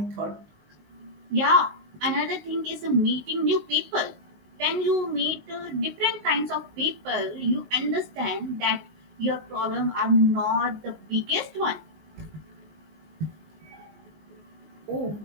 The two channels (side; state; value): left; late; 19 ms